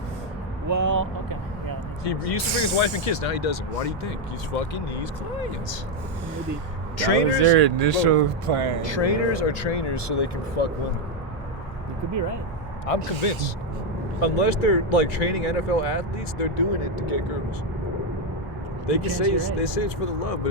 Well, okay. Yeah. He used to bring his wife and kids. Now he doesn't. Why do you think? He's fucking these clients. Maybe. That was their initial plan. Trainers are trainers so they can fuck women. You could be right. I'm convinced. Unless they're like training NFL athletes, they're doing it to get girls. They can say You're right. they say it's for the love, but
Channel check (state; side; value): normal; both; correlation 0.04